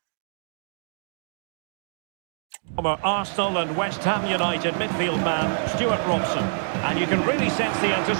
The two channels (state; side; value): silent; left; digital silence